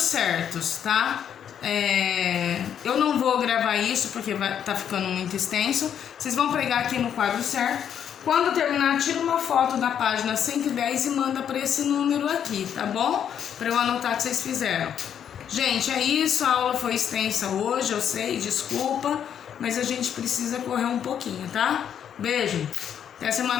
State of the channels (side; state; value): right; quieter; 8.9 dB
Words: certos, tá? Eu não vou gravar isso porque tá ficando muito extenso. Vocês vão pregar aqui no quadro certo. Quando terminar, tira uma foto da página 110 e manda para esse número aqui, tá bom? Para eu anotar que vocês fizeram. Gente, é isso. A aula foi extensa hoje, eu sei, desculpa, mas a gente precisa correr um pouquinho, tá? Beijo, até